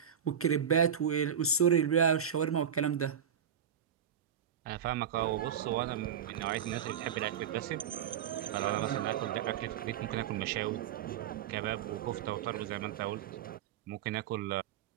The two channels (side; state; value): left; quieter; 8.3 dB